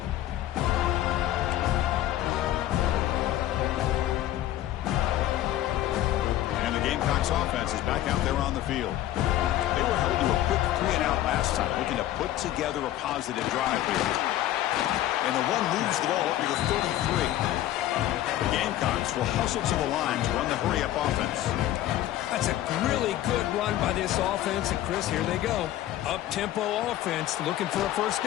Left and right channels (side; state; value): right; quieter; 13.5 dB